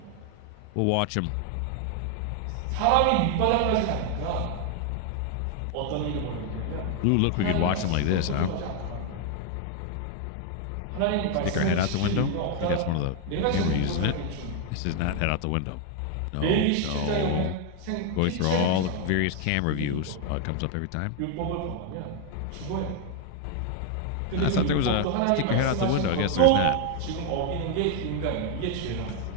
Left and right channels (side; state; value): both; different; correlation 0.00